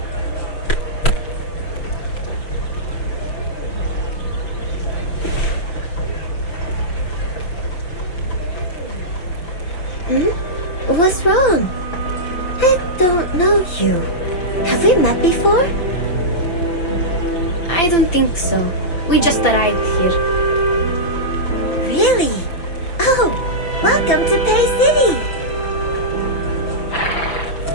What's wrong? I don't know you. Have we met before? I don't think so. We just arrived here. Really? Oh, welcome to Pay City!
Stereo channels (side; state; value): right; late; 5.7 ms